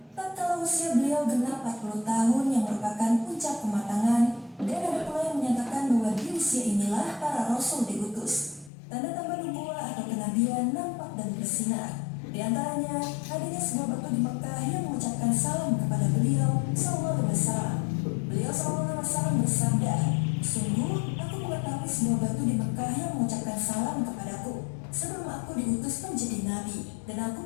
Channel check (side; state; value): right; drops out; at 8.7 s